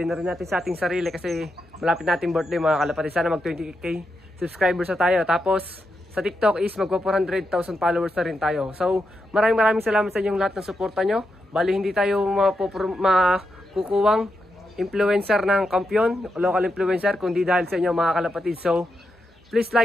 na rin natin sa ating sarili kasi malapit natin birthday mga kalapatids. Sana mag 20k subscribers na tayo. Tapos sa TikTok is magpa 400,000 followers na rin tayo. So maraming salamat sa inyong lahat ng suporta nyo. Bali hindi tayo makukuwang influencer ng kampiyon, local influencer, kundi dahil sa inyo mga kalapatids. So please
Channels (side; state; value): both; normal; correlation 0.85